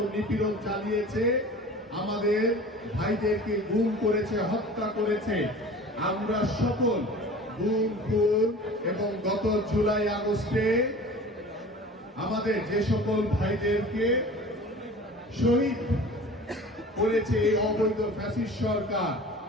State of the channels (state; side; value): normal; both; correlation 0.41